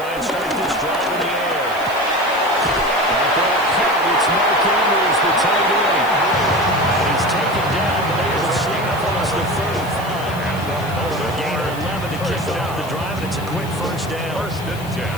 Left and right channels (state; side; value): noise; left; hiss, 18 dB below the sound